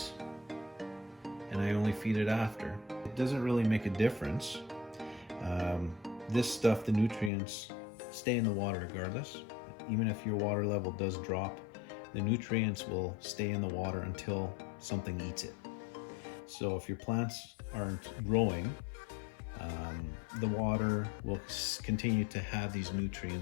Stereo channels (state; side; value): drops out; right; at 7.3 s